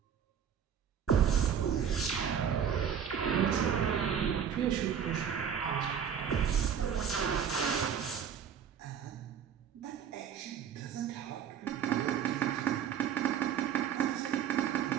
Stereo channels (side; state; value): left; quieter; 8.2 dB